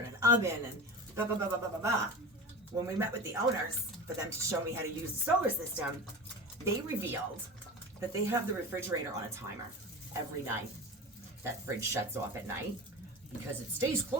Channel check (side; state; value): both; normal; correlation 0.31